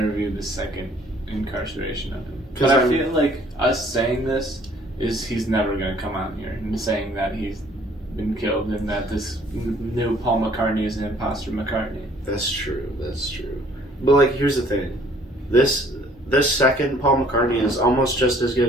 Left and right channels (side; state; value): both; normal; correlation 0.58